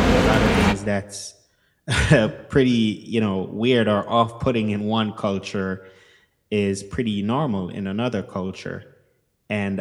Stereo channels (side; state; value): both; identical; correlation 1.00